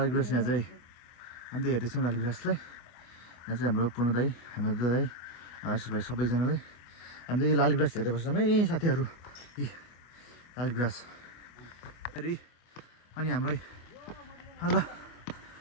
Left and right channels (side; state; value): right; late; 24 ms